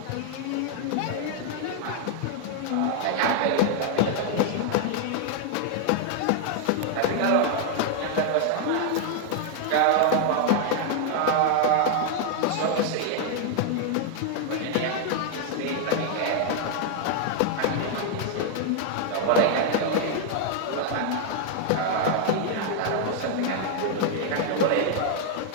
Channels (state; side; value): different; both; correlation 0.00